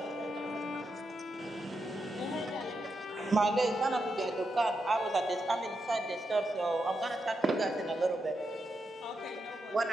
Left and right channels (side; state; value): both; normal; correlation 0.85